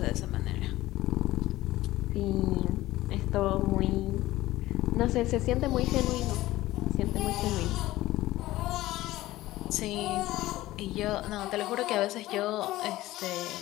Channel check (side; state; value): right; quieter; 16.7 dB